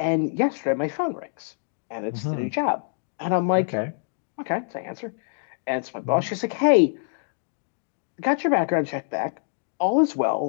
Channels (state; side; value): silent; right; digital silence